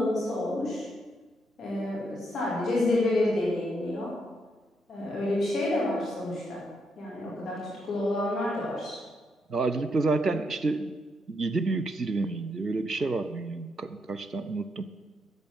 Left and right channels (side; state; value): both; normal; correlation 0.78